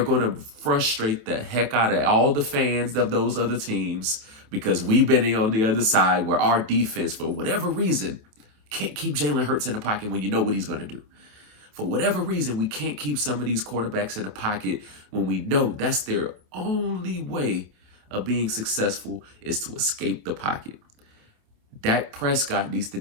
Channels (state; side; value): late; left; 27 ms